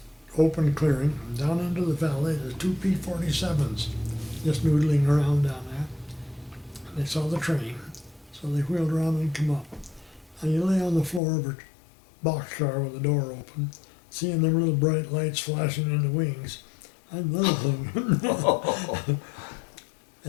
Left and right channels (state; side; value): drops out; right; at 11.2 s